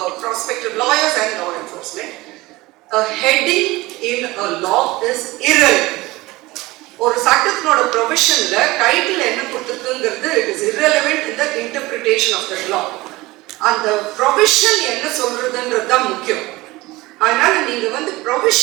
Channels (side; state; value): left; quieter; 20.3 dB